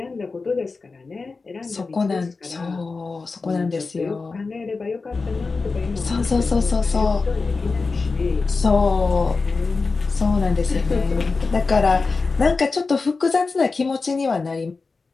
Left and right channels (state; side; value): quieter; right; 4.2 dB